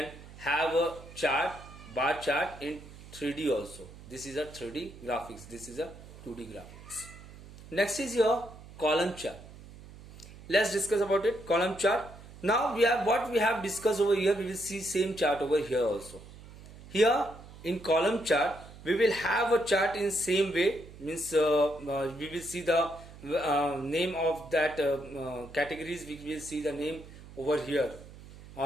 have a chart, bar chart in 3D also. This is a 3D graphics. This is a 2D graphics. Next is your column chart. Let's discuss about it. Column chart. Now we have what we have discussed over here. We will see same chart over here also. Here in column chart we will have a chart in same way. Means we will see the name of that categories. We will see the name over here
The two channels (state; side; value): noise; right; hum, 18 dB below the sound